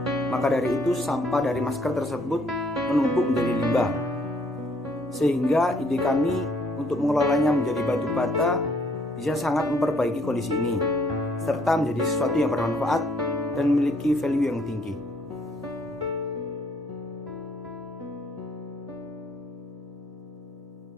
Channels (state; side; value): normal; both; correlation 0.65